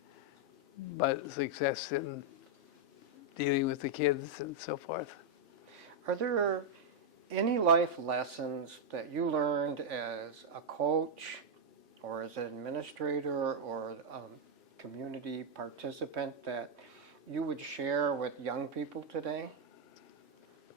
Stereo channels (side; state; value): both; normal; correlation -0.02